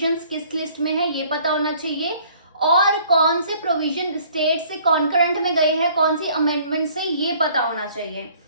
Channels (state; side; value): inverted; both; correlation -0.57